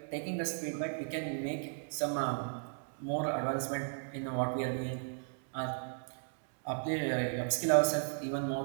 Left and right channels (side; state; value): left; silent; digital silence